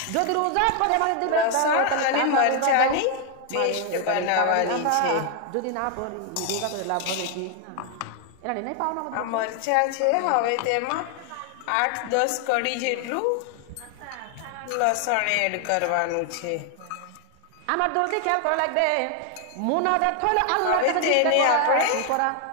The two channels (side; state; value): both; different; correlation 0.00